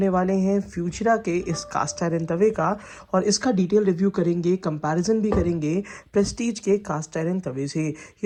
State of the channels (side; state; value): both; identical; correlation 1.00